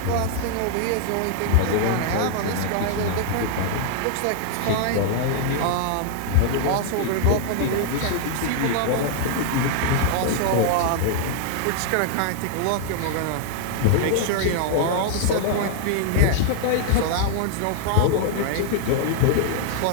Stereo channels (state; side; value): different; both; correlation 0.00